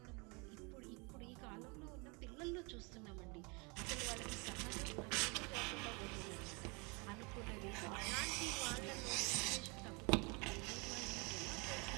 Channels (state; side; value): quieter; left; 29.8 dB